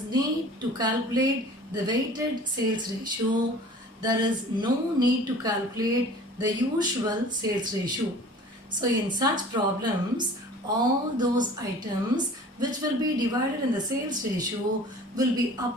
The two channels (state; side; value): normal; both; correlation 0.45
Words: need to calculate the weighted sales ratio, there is no need to calculate the usual sales ratio. So in such problems, all those items which will be divided in the sales ratio will be